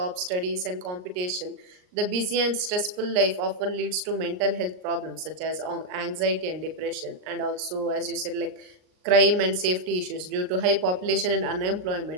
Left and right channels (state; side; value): late; left; 39 ms